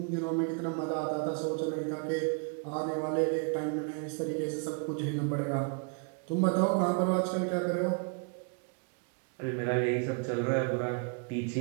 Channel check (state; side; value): quieter; left; 38.2 dB